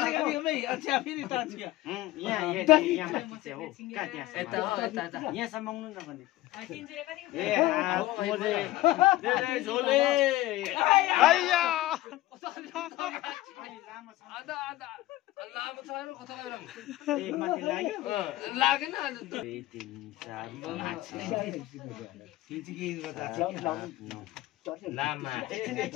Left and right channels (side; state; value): right; quieter; 16.7 dB